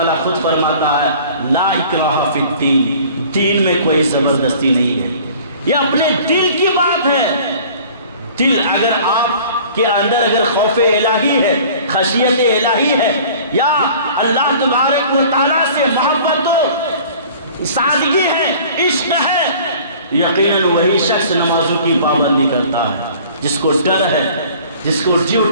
خود فرماتا ہے لا اکراہ فی الدین، دین میں کوئی زبردستی نہیں ہے۔ یہ اپنے دل کی بات ہے۔ دل اگر آپ کے اندر اگر خوف الہی ہے، خشیت الہی ہے، یا اللہ تبارک و تعالیٰ سے محبت و سادگی ہے، عشق ہے، یقیناً وہی شخص نمازوں کی پابندی کرتا ہے، جس کو ڈر ہے، جس کو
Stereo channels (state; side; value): inverted; both; correlation -0.48